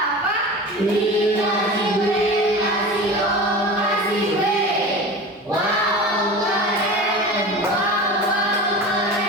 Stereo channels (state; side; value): normal; both; correlation 0.33